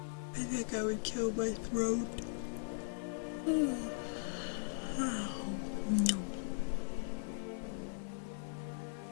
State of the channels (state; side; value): silent; right; digital silence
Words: I think I would kill my throat. Oh, no.